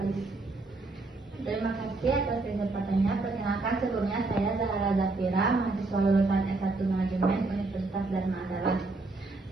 Terima kasih atas kesempatannya. Perkenalkan, sebelumnya saya Zahra Zafira, mahasiswa lulusan S1 Manajemen Universitas Dharma Adalah.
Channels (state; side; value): quieter; left; 3.4 dB